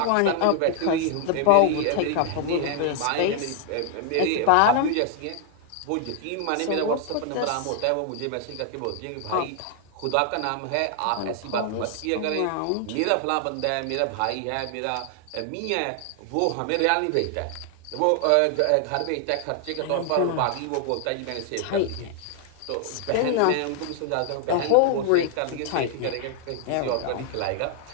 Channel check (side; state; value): both; different; correlation 0.00